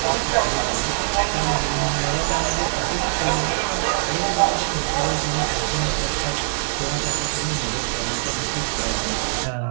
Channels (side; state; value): left; silent; digital silence